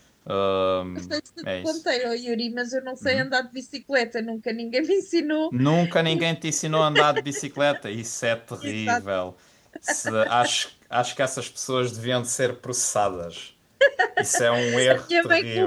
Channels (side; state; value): both; identical; correlation 1.00